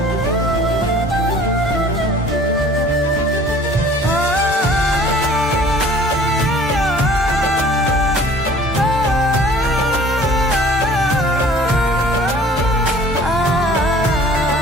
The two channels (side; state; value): both; normal; correlation 0.50